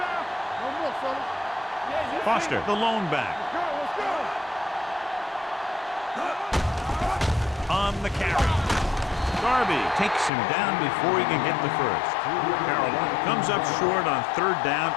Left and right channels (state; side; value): drops out; right; at 10.3 s